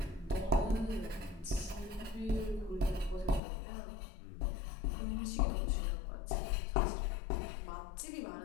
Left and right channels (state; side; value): drops out; right; at 3.4 s